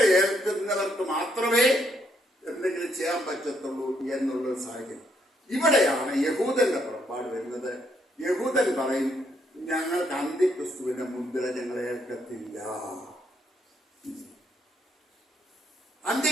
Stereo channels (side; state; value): both; normal; correlation 0.74